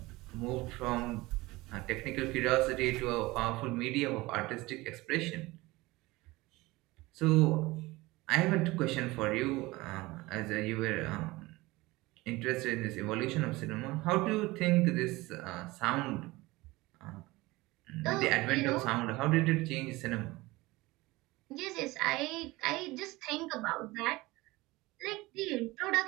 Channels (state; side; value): quieter; left; 20.8 dB